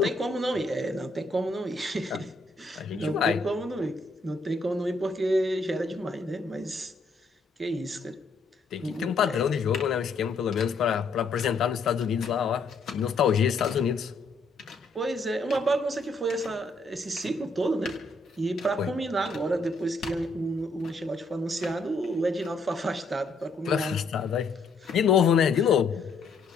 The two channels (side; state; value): right; quieter; 3.4 dB